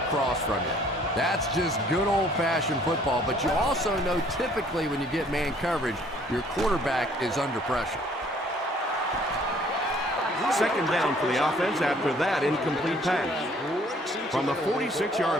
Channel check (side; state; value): both; normal; correlation 0.59